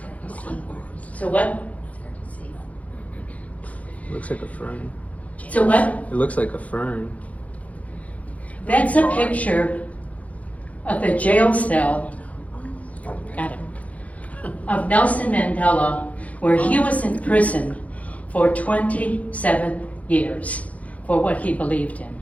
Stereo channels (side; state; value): right; late; 0.068 ms